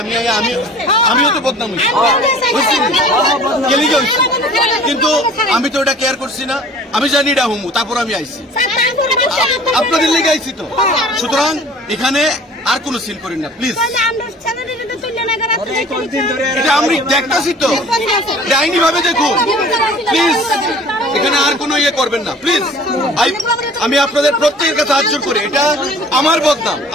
আমিও তো বদনাম হয়েছি, কিন্তু আমি তো এটা কেয়ার করছি না। আমি জানি এটা হুমু, তারপর আমি আইছি, আপনাদের লেগে আইছি তো। সুতরাং এখানে আর কোনো সিন করেন না প্লিজ। এটা আমি দেখতেছি তো, আইনি ভাবে দেখুন প্লিজ। এখানে আর কোনো ইয়ে করবেন না প্লিজ। আমি আপনাদের প্রত্যেকের কাছে হাত জোর করে, এটা আমার বদনাম,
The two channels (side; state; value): both; normal; correlation 0.47